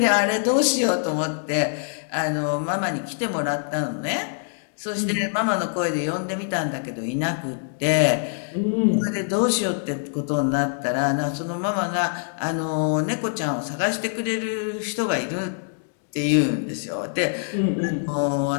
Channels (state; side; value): silent; right; digital silence